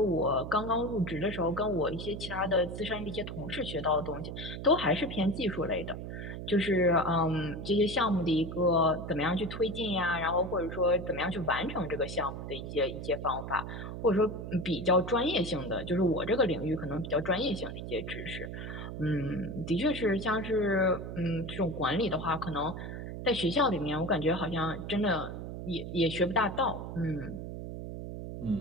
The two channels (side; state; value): right; noise; hum, 7 dB below the sound